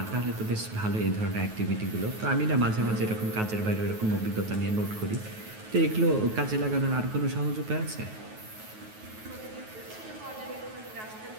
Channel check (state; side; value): late; left; 9.3 ms